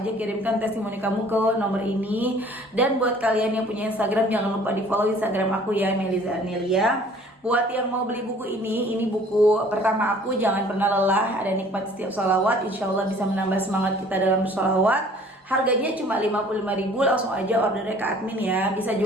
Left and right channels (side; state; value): both; normal; correlation 0.53